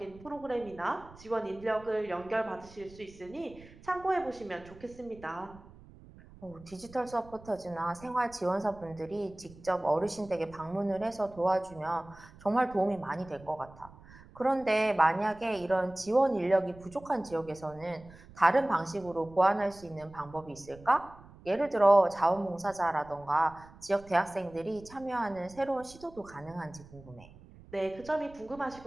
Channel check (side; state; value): right; noise; rumble, 21 dB below the sound